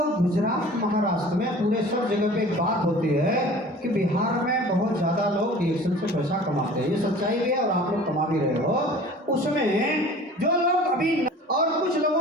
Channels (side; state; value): both; normal; correlation 0.44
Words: गुजरात महाराष्ट्र में पूरे सब जगह पे एक बात होती है कि बिहार में बहुत ज़्यादा लोग डिएक्शन से पैसा कमाते हैं, ये सच्चाई भी है और आप लोग कमा भी रहे हो। उसमें जो लोग अभी और कुछ